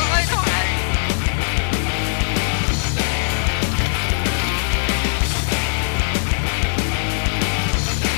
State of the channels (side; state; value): right; silent; 59 dB below the other